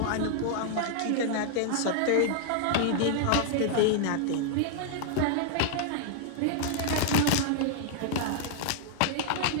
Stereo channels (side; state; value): both; different; correlation -0.01